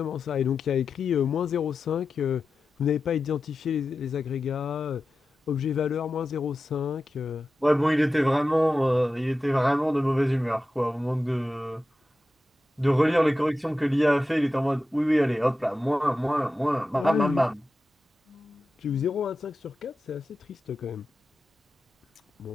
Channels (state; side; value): normal; both; correlation 0.92